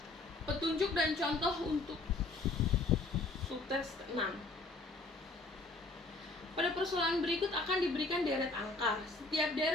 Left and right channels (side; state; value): right; quieter; 3.3 dB